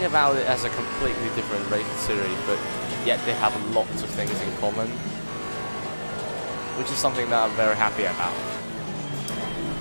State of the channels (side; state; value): both; inverted; correlation -1.00